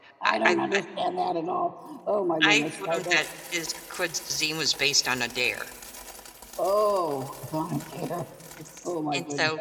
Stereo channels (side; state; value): both; identical; correlation 1.00